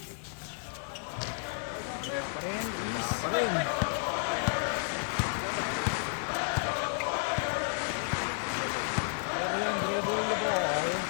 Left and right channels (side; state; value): right; silent; 57 dB below the other